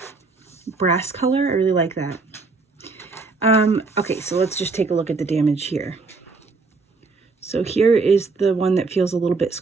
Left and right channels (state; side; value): quieter; left; 4.0 dB